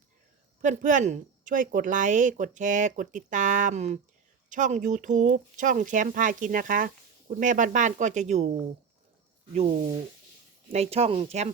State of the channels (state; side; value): quieter; left; 6.2 dB